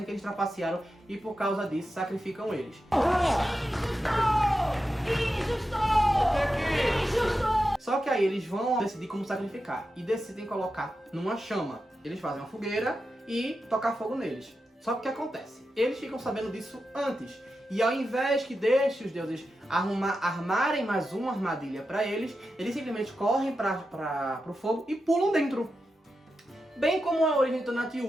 que eles trapacearam e por causa disso sacrificam eles. Só que aí eles vão decidir como sacrificar e decidem colocar numa chama. Eles fazem uma fogueira e tocar fogo neles. Só que o que acontece? Eles ficam sabendo disso antes. E ao invés que deixe os deuses armarem mais uma armadilha para eles simplesmente correm para o fogo e pulam dentro. Bem como a origem do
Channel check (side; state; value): both; normal; correlation 0.90